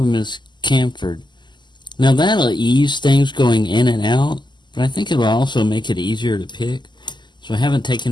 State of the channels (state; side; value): late; right; 0.21 ms